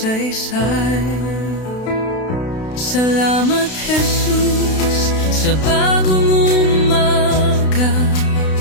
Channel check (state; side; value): late; right; 32 ms